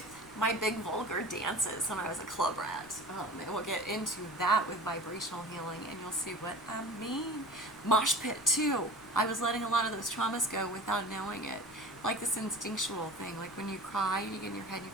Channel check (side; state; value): left; noise; rumble, 27 dB below the sound